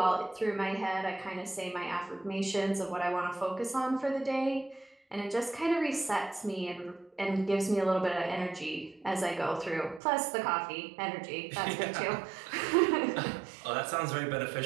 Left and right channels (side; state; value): left; drops out; at 10.0 s